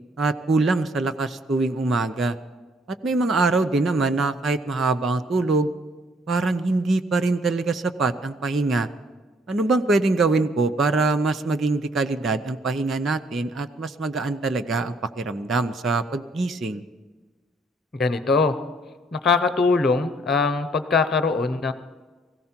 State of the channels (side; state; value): both; normal; correlation 0.64